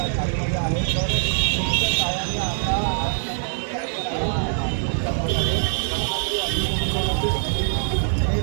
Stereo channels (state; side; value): silent; left; digital silence